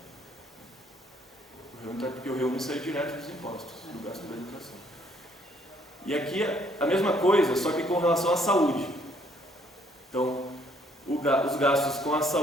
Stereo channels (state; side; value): normal; both; correlation 0.65